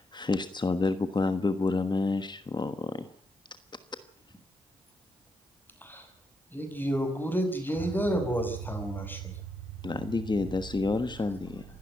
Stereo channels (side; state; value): both; normal; correlation 0.81